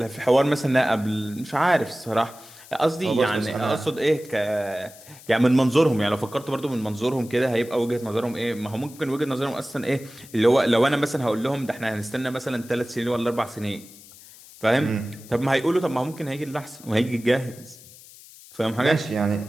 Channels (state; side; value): noise; left; hiss, 20 dB below the sound